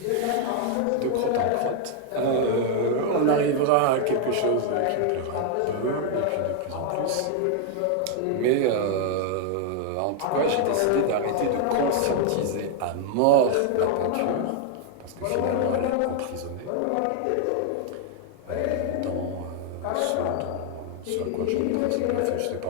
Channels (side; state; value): both; different; correlation 0.00